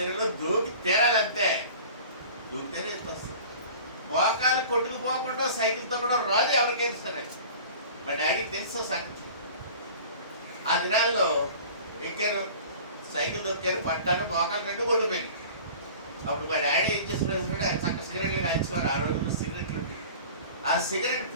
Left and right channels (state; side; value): inverted; both; correlation -0.42